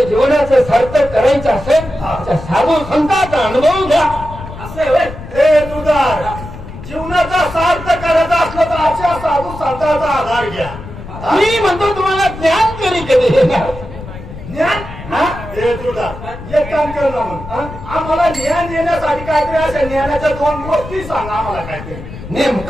जीवनाचं सार्थक करायचं असेल तर साधू संतांचा अनुभव घ्या. असं आहे होय? ए तुझार जीवनाचा सार्थ करायचा असलं तर अशा साधू संतांचा आधार घ्या. मी म्हणतो तुम्हाला ज्ञान तरी कधी येणार. ज्ञान हा? ए तुझा एक काम कर ना मग. आम्हाला ज्ञान येण्यासाठी काहीतरी अशा ज्ञानाच्या दोन गोष्टी सांग आम्हाला काहीतरी.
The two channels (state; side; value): noise; left; rumble, 13 dB below the sound